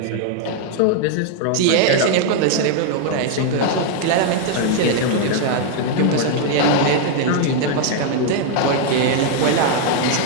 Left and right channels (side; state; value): both; different; correlation 0.00